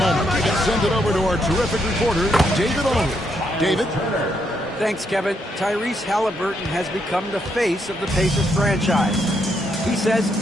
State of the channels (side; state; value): both; normal; correlation 0.77